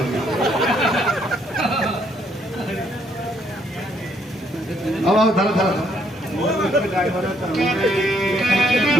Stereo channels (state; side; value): normal; both; correlation 0.70